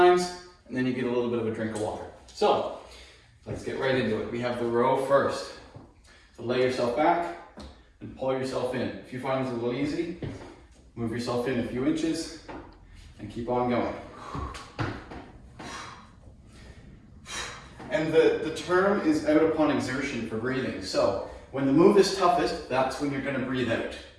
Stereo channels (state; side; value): identical; both; correlation 1.00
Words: and then you get a little bit of a drink of water. So, let's get right into it. We have the row first. So lay yourself back and pull yourself in. If you find this a little easy, move yourself in a few inches and keep on going. And the term is out upon exertion for breathing. So when the move is toughest, that's when you're going to breathe out.